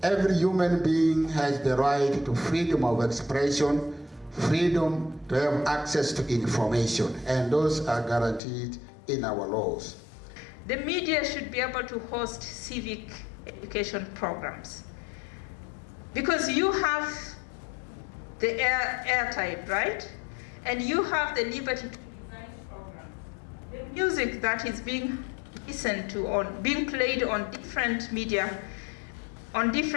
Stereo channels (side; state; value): right; drops out; at 8.4 s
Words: every human being has the right to freedom of expression, freedom to have access to information, and those are guaranteed in our laws. The media should be able to host civic education programs, because you have the airtime, right? And you have the liberty to design programs. The music that is being listened to, being played on different media, on